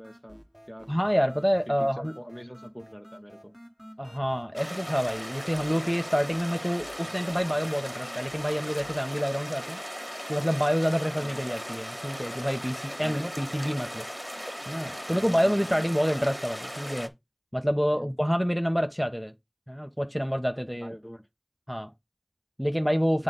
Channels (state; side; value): identical; both; correlation 1.00